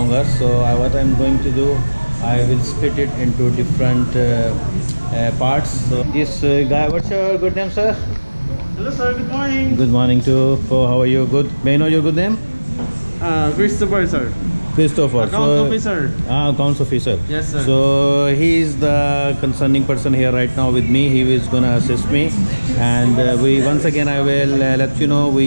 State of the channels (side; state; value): both; inverted; correlation -1.00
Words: So, what I'm going to do, I will split it into different parts. So, this guy, what's your good name, sir? Hello sir, good morning. Good morning too. How are you? Good. May I know your good name? Christopher sir. Christopher. Account officer. Accounts officer. Yes sir. So he is the concerning person here right now with me. He is gonna assist me, and we once again I will let you know